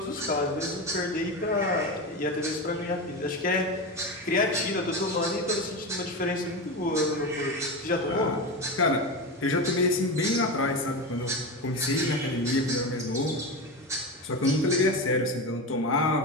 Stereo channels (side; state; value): both; normal; correlation 0.20